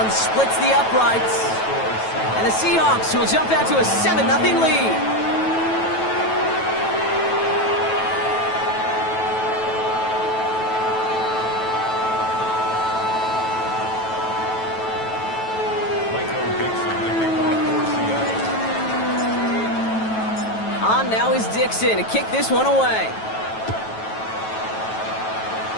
splits the uprights. And the Seahawks will jump out to a 7-0 lead. On now is Dixon to kick this one away.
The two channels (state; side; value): late; right; 9.2 ms